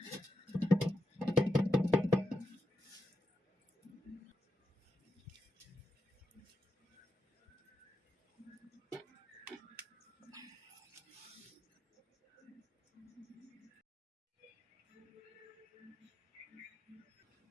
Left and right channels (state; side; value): normal; both; correlation 0.85